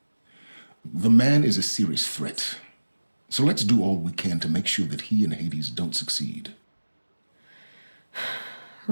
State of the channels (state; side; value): inverted; both; correlation -1.00